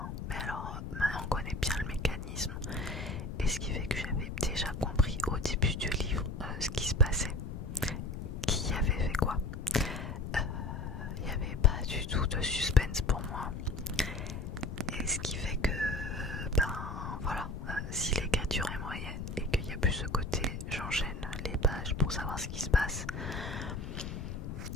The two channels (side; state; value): left; noise; rumble, 6 dB below the sound